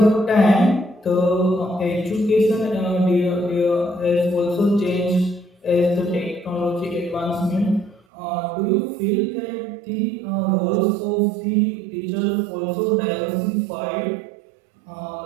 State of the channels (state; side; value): drops out; left; at 8.0 s